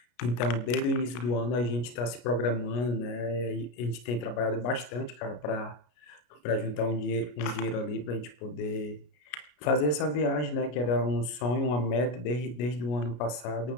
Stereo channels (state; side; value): late; right; 33 ms